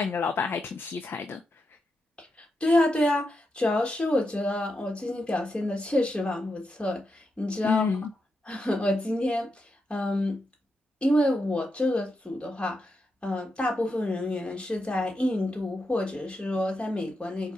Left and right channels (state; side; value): normal; both; correlation 0.85